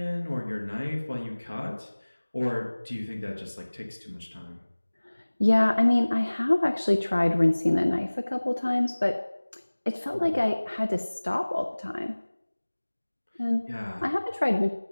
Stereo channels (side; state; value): both; inverted; correlation -1.00